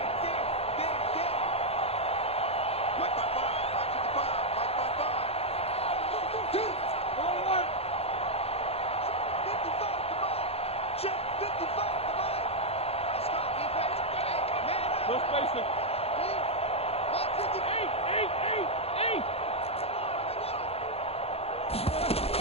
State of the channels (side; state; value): right; late; 0.29 ms